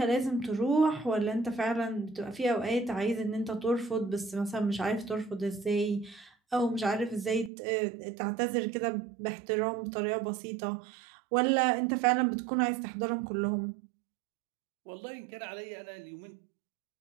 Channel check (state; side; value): drops out; left; at 7.5 s